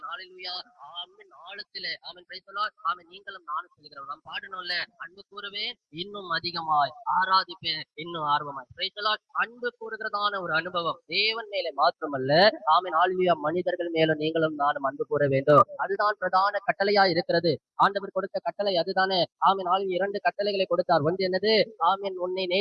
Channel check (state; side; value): identical; both; correlation 1.00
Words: ஹalleluya. ஆமென் ஆழத்திலே ஆமென். Praise the Lord. ஆமென். நீங்களும் நானும் சொல்லுகிறோம். நாம் பாடணும்ல, அன்பு கூறுவேன் இன்னும் அதிகமாய், ஆராதிப்பேன் இன்னும் ஆர்வமாய். Praise the Lord. அன்பு கூறுகிறதான ஒரு அனுபவம் தேவன் மேலே மாத்திரமல்ல, ஆமென். ஹalleluya. மனிதர்கள் மேலும் நீங்களும் நானும் அன்பு கூற வேண்டும். அதுதான் பிரதான கட்டளையா இருக்கிறது. ஆண்டவர் கொடுத்த கட்டளை அதுதானே. ஆமென். 2 கட்டளைகளை கொடுத்தார். ஒன்று என்னது? ஆமென். உன்னை